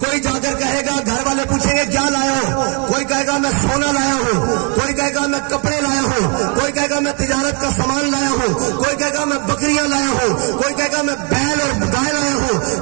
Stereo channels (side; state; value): left; quieter; 36.8 dB